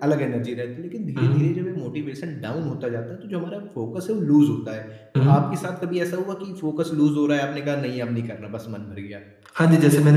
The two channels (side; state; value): both; identical; correlation 1.00